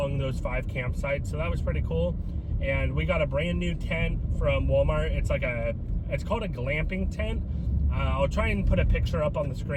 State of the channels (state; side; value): identical; both; correlation 1.00